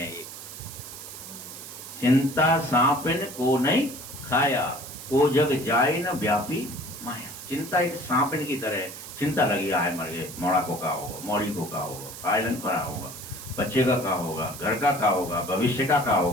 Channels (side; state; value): right; noise; hiss, 12 dB below the sound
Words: एक, चिंता सांपिन को नहीं खाया, को जग जाए न व्यापी माया। चिंता एक सांपिन की तरह है। चिंता लगी है, मर गए, मोड़ा को का होगा, मौड़ी को का होगा, आयरन का होगा, बच्चे का क्या होगा, घर का क्या होगा, भविष्य का क्या